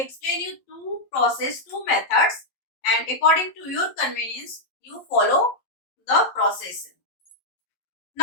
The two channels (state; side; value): late; right; 11 ms